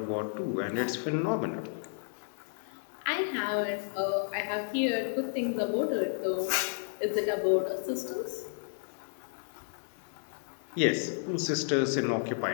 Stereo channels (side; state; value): right; silent; digital silence